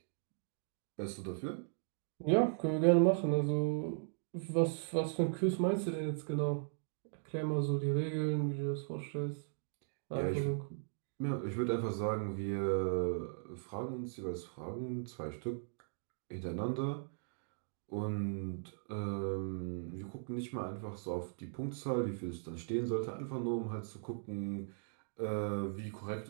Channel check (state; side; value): silent; left; digital silence